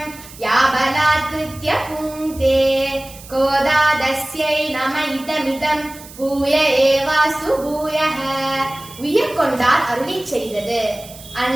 யாபலாத்ருத்ய புங்கே கோதாதஸ்யை நம இதமிதம் பூய ஏவாசு பூயஹ. உய்யக்கொண்டார் அருளிச் செய்தது.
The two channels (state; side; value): noise; right; hiss, 18 dB below the sound